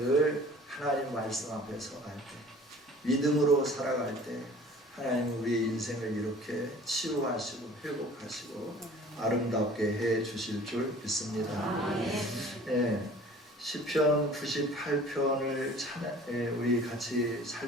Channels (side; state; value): both; normal; correlation 0.47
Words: 하나님 말씀 앞에 서갈 때, 믿음으로 살아갈 때 하나님은 우리의 인생을 이렇게 치유하시고 회복하시고 아름답게 해 주실 줄 믿습니다. 네, 시편 98편을 우리 같이